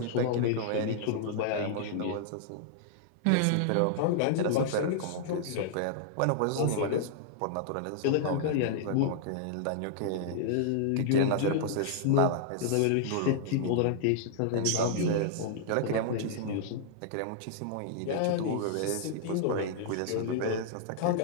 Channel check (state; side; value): different; both; correlation -0.01